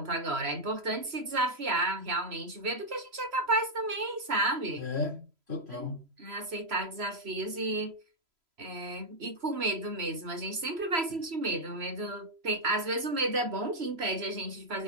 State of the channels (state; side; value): late; left; 3.0 ms